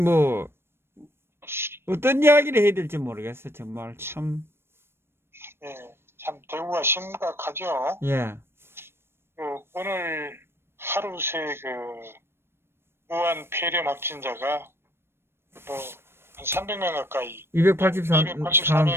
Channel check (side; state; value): left; late; 0.12 ms